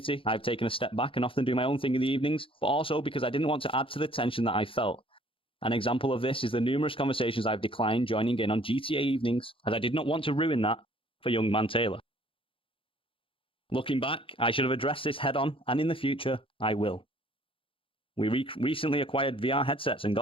I've taken a step back and often do my own thing in the evenings, but also because I didn't want to add to the tension that I felt. An example of this is the numerous conversations I've declined joining in on GTA evenings, as I did not want to ruin that for young man Taylor. Looking back, I should have addressed this head on, and in the future, I will. We recently acquired VR headsets and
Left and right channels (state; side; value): late; right; 0.26 ms